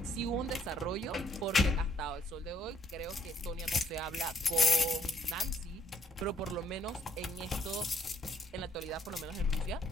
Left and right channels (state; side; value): normal; both; correlation 0.68